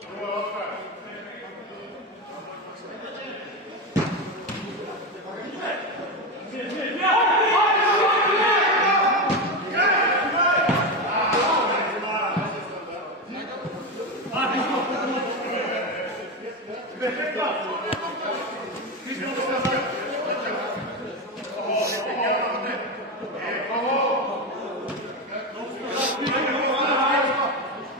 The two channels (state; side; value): normal; both; correlation 0.15